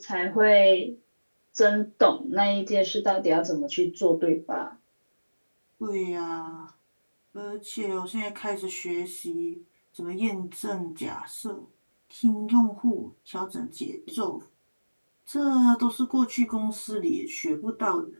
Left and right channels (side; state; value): both; inverted; correlation -1.00